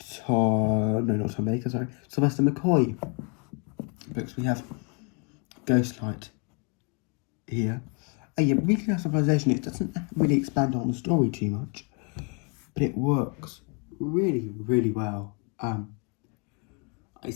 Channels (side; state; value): right; quieter; 33.1 dB